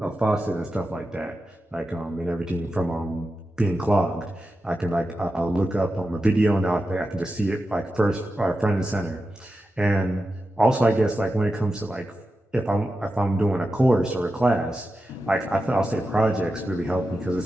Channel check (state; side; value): normal; both; correlation 0.91